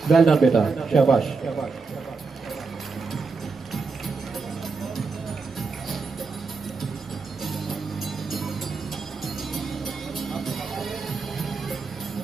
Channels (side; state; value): left; quieter; 4.5 dB